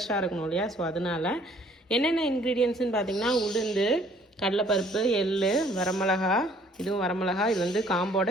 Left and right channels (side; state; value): both; normal; correlation 0.59